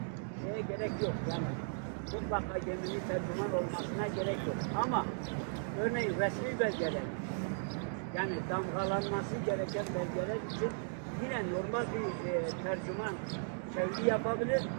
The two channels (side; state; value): left; silent; digital silence